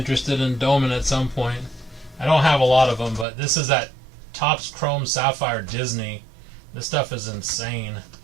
in doming at some point. I don't have a lot of them, but this is that Topps Chrome Sapphire Disney. This stuff is insane.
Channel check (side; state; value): left; drops out; at 3.2 s